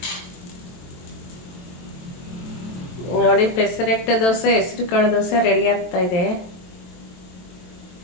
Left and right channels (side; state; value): right; late; 23 ms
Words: ನೋಡಿ, ಪೆಸರೆಟ್ಟು ದೋಸೆ, ಹೆಸರು ಕಾಳು ದೋಸೆ ರೆಡಿ ಆಗ್ತಾ ಇದೆ.